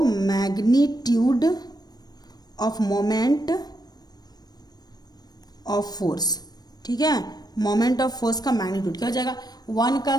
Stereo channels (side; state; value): right; late; 0.19 ms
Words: magnitude of moment of force. ठीक है, मोमेंट ऑफ फोर्स का मैग्नीट्यूड क्या हो जाएगा, 1 का